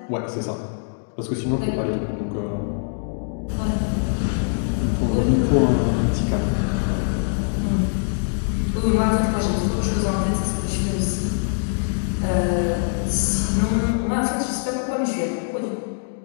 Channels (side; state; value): right; silent; digital silence